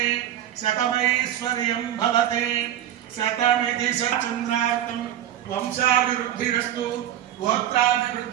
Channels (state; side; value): quieter; left; 11.4 dB